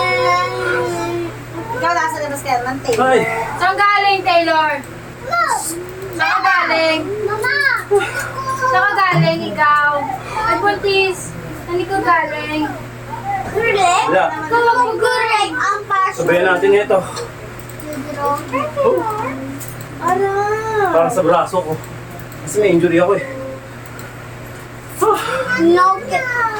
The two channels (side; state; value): both; identical; correlation 1.00